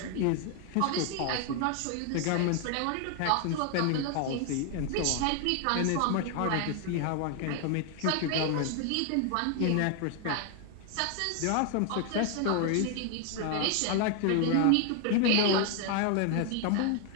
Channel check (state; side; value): different; both; correlation 0.00